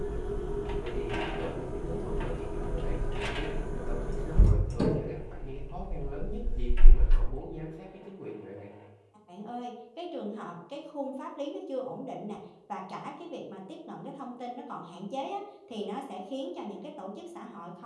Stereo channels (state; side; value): identical; both; correlation 1.00